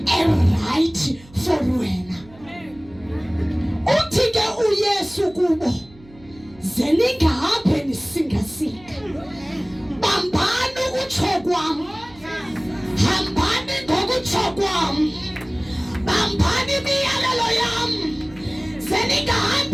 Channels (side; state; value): right; noise; hum, 24 dB below the sound